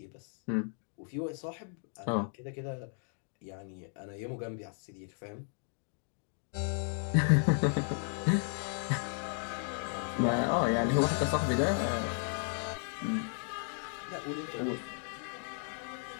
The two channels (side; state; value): right; silent; 55 dB below the other